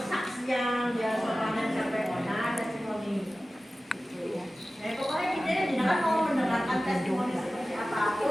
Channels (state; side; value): normal; both; correlation 0.96